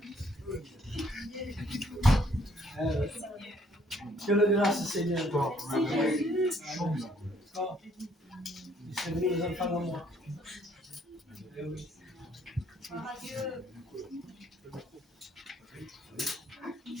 Que la grâce, Seigneur. C'est venu les enfants à moi.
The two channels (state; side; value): normal; both; correlation 0.65